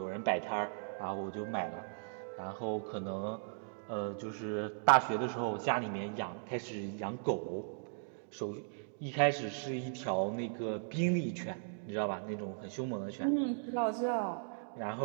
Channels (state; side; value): silent; left; digital silence